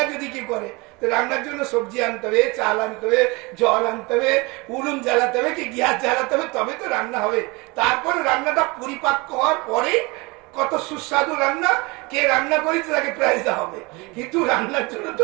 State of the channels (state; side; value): quieter; left; 25.9 dB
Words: যদি কি করে, তো রান্নার জন্য সবজি আনতে হবে, চাল আনতে হবে, জল আনতে হবে, উনুন জ্বালাতে হবে, কি গ্যাস জ্বালাতে হবে, তবে তো রান্না হবে। তারপরে রান্নাটা পরিপাক্ক হওয়ার পরে কত সুস্বাদু রান্না, কে রান্না করেছে তাকে প্রাইজ দেওয়া হবে, কিন্তু রান্নার জন্য